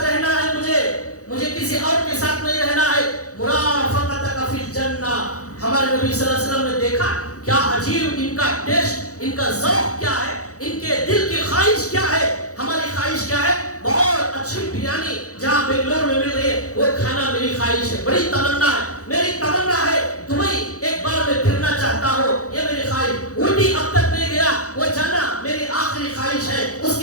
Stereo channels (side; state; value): right; late; 0.66 ms